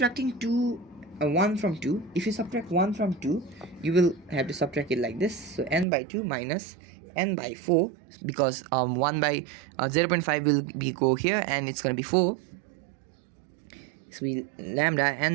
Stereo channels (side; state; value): left; drops out; at 5.9 s